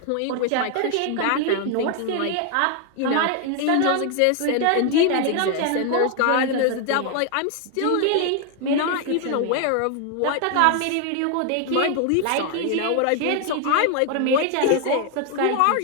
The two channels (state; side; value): different; both; correlation 0.00